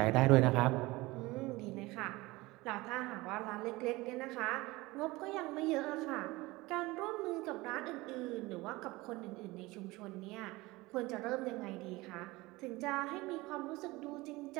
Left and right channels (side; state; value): left; quieter; 21.1 dB